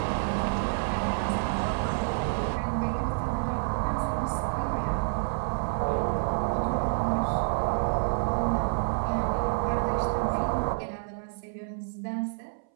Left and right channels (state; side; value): silent; left; 59 dB below the other